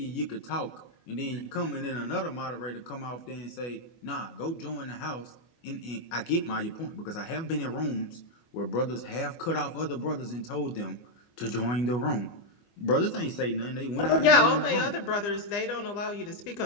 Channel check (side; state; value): right; late; 25 ms